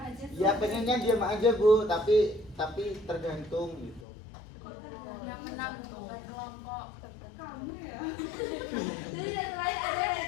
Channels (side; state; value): right; drops out; at 4.0 s